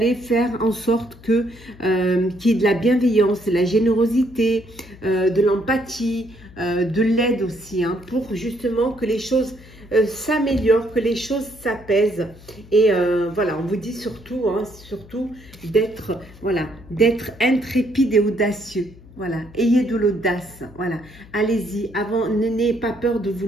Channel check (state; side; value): noise; left; hum, 21 dB below the sound